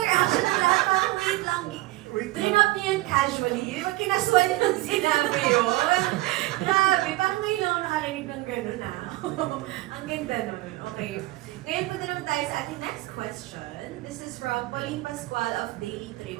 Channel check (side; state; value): left; quieter; 19.3 dB